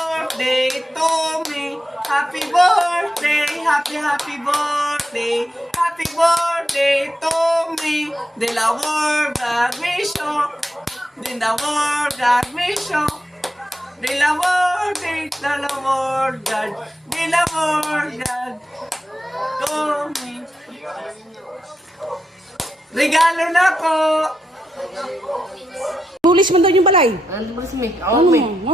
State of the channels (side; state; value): both; normal; correlation 0.85